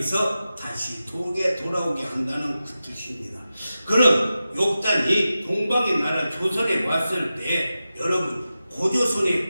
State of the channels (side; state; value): both; inverted; correlation -0.93